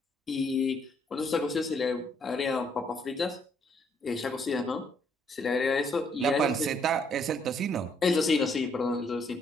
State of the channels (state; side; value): normal; both; correlation 0.69